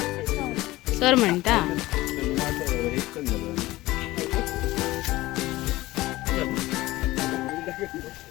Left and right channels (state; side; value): quieter; right; 18.2 dB